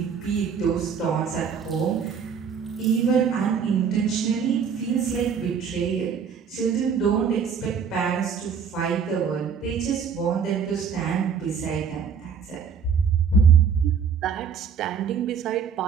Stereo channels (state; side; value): quieter; left; 6.7 dB